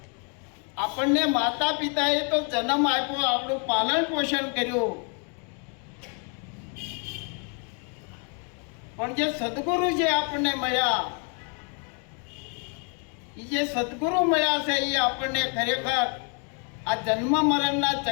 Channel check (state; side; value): quieter; right; 37.6 dB